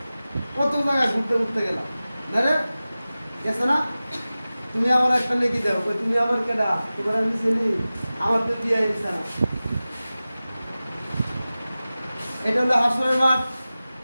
কত জায়গায় ঘুরতে গেলাম, না রে গেছে না? তুমি আমার একটা নেকি দাও, তুমি আমার কেডা, তোমার আমি চিনি, আমার তো বিয়ে হয়েছে না। এটা হলো হাসরের মাঠ।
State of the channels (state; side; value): inverted; both; correlation -0.96